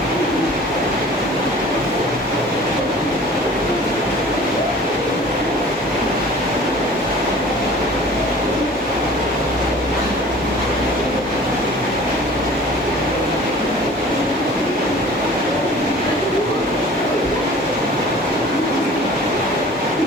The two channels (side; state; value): both; normal; correlation 0.45